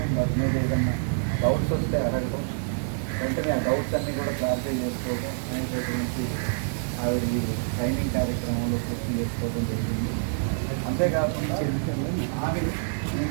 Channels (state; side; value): silent; left; 57 dB below the other